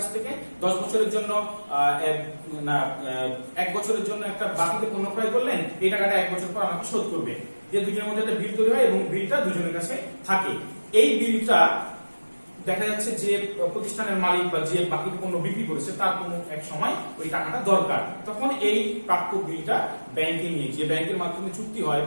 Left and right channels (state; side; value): inverted; both; correlation -1.00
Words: থেকে 10 বছরের জন্য 1 বছরের জন্য একটা বাকিতে পণ্য ক্রয় করলেন, এই টাকাটা 1 বছর পর আমাকে শোধ করবে। যে দুজনের মধ্যে একটা বিল তৈরি হয় এবং বিলটা দুজনের কাছে থাকে। এই বিলটা দেখা যাচ্ছে যে প্রতিষ্ঠানের মালিক বা যে বাকি পণ্য বিক্রি করেছে তার কোনো এক সময় ওই টাকাটা দরকার, তখন এই প্রাপ্য বিলটা ব্যাংকে নিয়ে, যে ব্যাংকের মাধ্যমে চুক্তি হয়